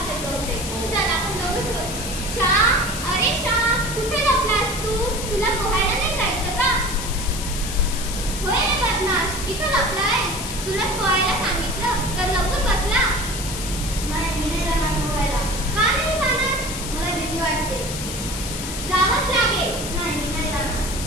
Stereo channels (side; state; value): left; noise; hiss, 7 dB below the sound